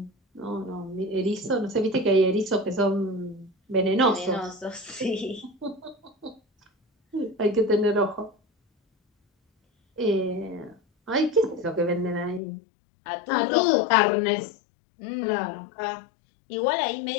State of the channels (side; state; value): right; drops out; at 12.4 s